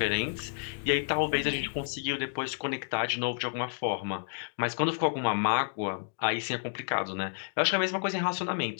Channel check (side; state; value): right; silent; digital silence